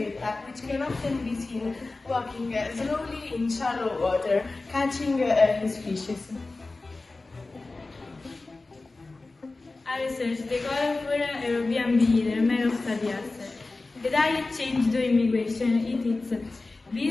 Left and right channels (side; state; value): right; quieter; 3.4 dB